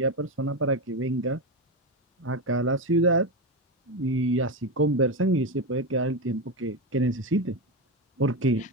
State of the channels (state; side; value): normal; both; correlation 0.13